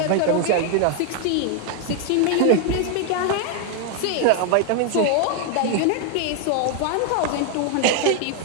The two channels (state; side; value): different; both; correlation 0.00